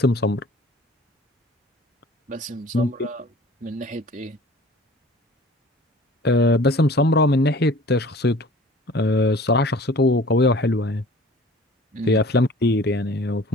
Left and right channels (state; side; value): normal; both; correlation 0.47